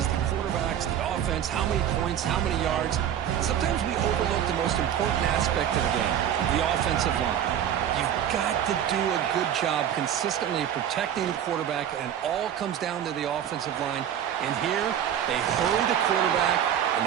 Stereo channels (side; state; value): left; quieter; 9.9 dB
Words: the quarterbacks, the offense, how many points, how many yards. Sometimes we overlook the most important aspect of the game, the offensive line. You've got to do a good job consistently protecting the quarterback, and it all comes down to the offensive line. And here, they hurry the quarterback,